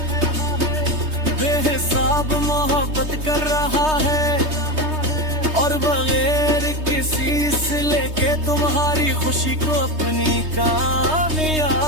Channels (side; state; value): left; late; 3.2 ms